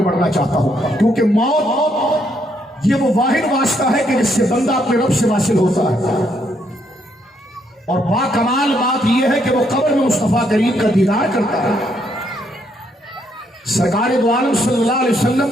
بڑھنا چاہتا ہوں، کیونکہ موت یہ وہ واحد واسطہ ہے کہ جس سے بندہ اپنے رب سے واصل ہوتا ہے، اور باکمال بات یہ ہے کہ وہ قبر میں مصطفیٰ کریم کا دیدار کرتا ہے، سرکار دو عالم صلی اللہ علیہ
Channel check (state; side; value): normal; both; correlation 0.73